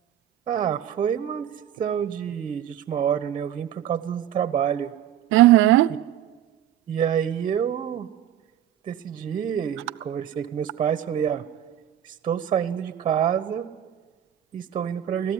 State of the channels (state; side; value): quieter; left; 11.0 dB